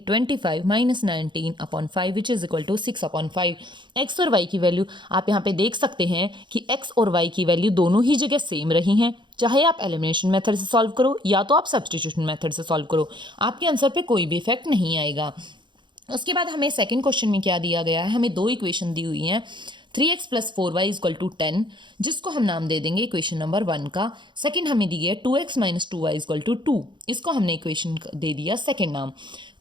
25 - 19/5 which is equal to 6/5। x और y की वैल्यू आप यहाँ पे देख सकते हैं कि x और y की वैल्यू दोनों ही जगह सेम रही हैं। चाहे आप एलिमिनेशन मेथड से सॉल्व करो या तो आप सब्स्टिट्यूशन मेथड से सॉल्व करो, आपके आंसर पे कोई भी इफेक्ट नहीं आएगा। उसके बाद हमें सेकंड क्वेश्चन में क्या दिया गया है, हमें दो इक्वेशन दी हुई हैं, 3x + 4y = 10, जिसको हम नाम दे देंगे इक्वेशन नंबर 1 का। सेकंड हमें दी है 2x - 2y = 2, इसको हमने इक्वेशन दे दिया सेकंड नाम।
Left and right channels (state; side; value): late; left; 0.23 ms